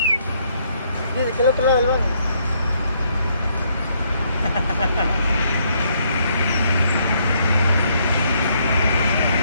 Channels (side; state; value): both; inverted; correlation -0.71